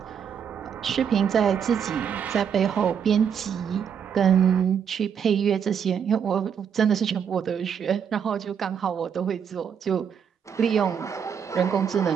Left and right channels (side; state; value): left; quieter; 7.7 dB